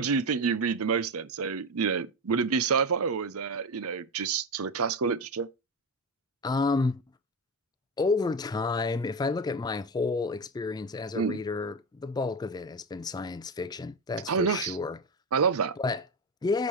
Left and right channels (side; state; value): both; normal; correlation 0.17